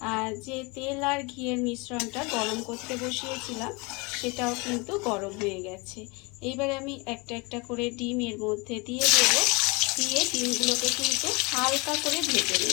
যে তেল আর ঘিয়ের মিশ্রণটা গরম করতে বসিয়েছিলাম, সেটাও কিন্তু গরম হয়ে গেছে। এইবারে আমি একটা একটা করে ডিম এর মধ্যে দিয়ে দেবো। দিয়ে ডিমগুলোকে কিন্তু হালকা করে ভেজে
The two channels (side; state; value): right; quieter; 27.8 dB